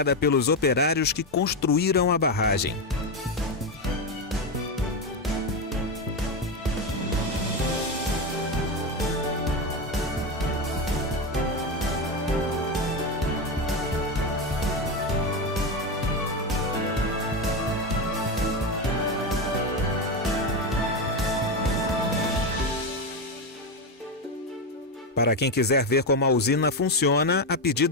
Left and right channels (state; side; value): normal; both; correlation 0.12